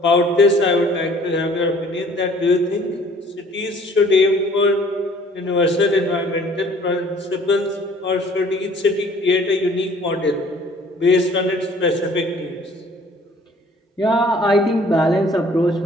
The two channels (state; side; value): normal; both; correlation 0.54